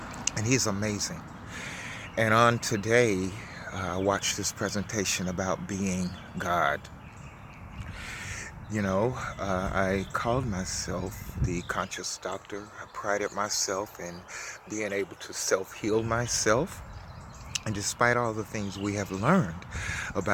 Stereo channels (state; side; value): identical; both; correlation 1.00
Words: and he's amazing. And on today, I watched this presentation about being God. You know, I called myself the conscious doctor. I prided myself in being able to self-heal myself. And despite all the things we have learned